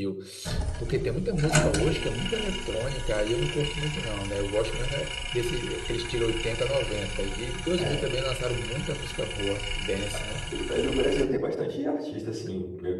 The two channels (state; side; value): identical; both; correlation 1.00